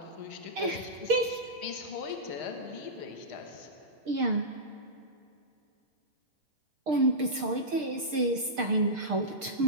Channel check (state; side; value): late; left; 6.6 ms